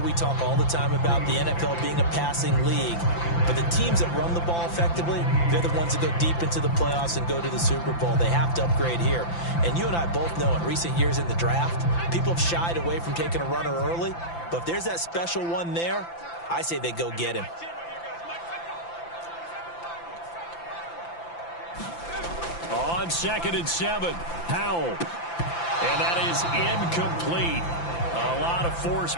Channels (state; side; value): late; right; 5.9 ms